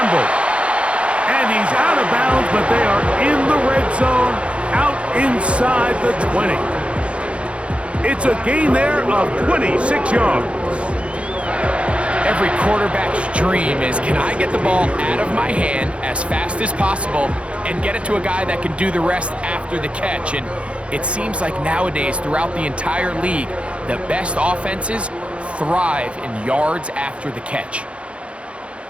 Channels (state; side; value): late; left; 0.060 ms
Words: And he's out of bounds, but they are in the red zone, out inside the 20. It's a gain there of 26 yards. Every quarterback's dream is, can I get the ball out of my hand as fast as possible and get it to a guy that can do the rest after the catch? And it seems like nowadays, throughout the entire league, the best offenses thrive in yards after the catch.